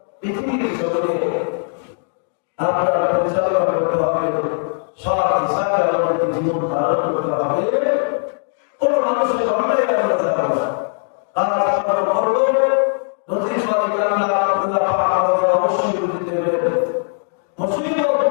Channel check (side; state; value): right; silent; digital silence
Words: পৃথিবীর জগতে আপনার পরিচালনা করতে হবে, সৎ হিসাবে আমাদেরকে জীবন ধারণ করতে হবে। কোন মানুষের অন্যায় আমরা যাবো না। আমরা করবো নদীর সঙ্গে অবশ্যই বুঝতে হবে। মুসিবত